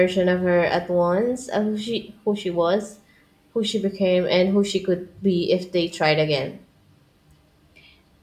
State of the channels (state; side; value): identical; both; correlation 1.00